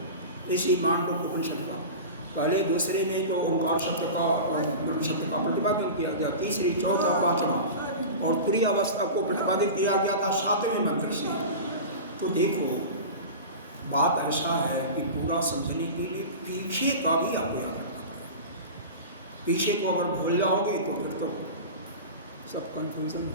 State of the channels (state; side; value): inverted; both; correlation -0.30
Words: इसी मांडव उपनिषद का, पहले 2रे में तो ओंकार शब्द का और ब्रह्म शब्द का प्रतिपादन किया गया, 3री, 4था, 5वां और तुरीय अवस्था को प्रतिपादित किया गया था 7वें मंत्र से। तो देखो बात ऐसा है कि पूरा समझने के लिए पीछे का भी आपको याद रखना पड़ेगा। पीछे को अगर भूल जाओगे तो फिर तो सब कंफ्यूजन